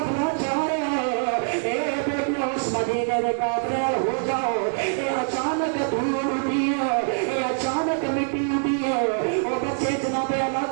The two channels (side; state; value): left; silent; digital silence